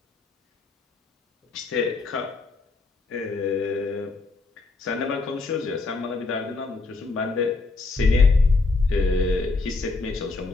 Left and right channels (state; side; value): quieter; right; 3.6 dB